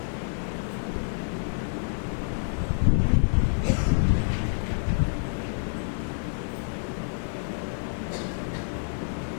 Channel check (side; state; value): right; silent; digital silence